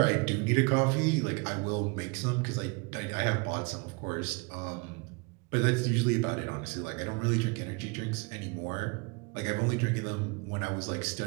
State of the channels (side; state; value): left; quieter; 30.3 dB